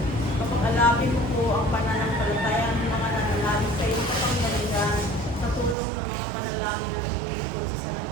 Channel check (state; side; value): drops out; left; at 5.8 s